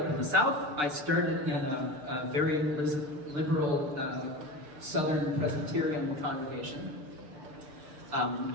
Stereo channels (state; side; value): late; left; 6.8 ms